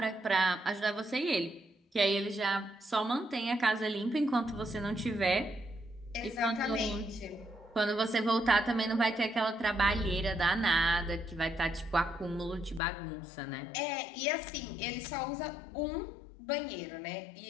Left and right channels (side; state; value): right; drops out; at 12.8 s